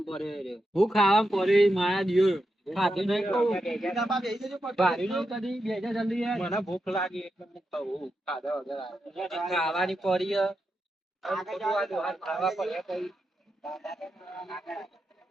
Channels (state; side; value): normal; both; correlation 0.87